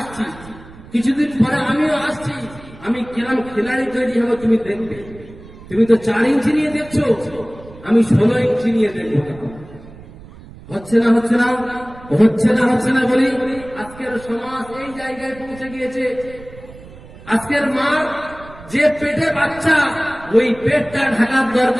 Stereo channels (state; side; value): noise; right; rumble, 19 dB below the sound